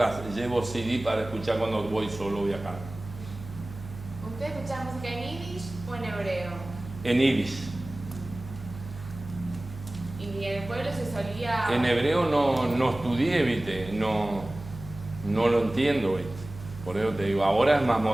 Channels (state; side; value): noise; right; hum, 13 dB below the sound